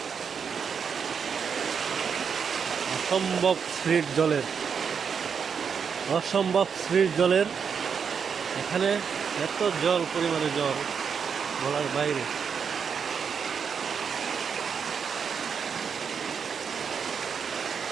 অসম্ভব স্পিড জলের, অসম্ভব স্পিড জলের। এখানে এত জল, পরিমাণে জল বলার বাইরে।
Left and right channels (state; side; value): quieter; left; 6.6 dB